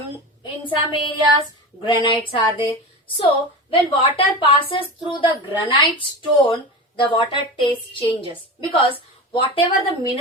in some areas, granites are there. So, when water passes through the granite stone, the water taste changes. Because whatever the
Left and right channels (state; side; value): normal; both; correlation 0.27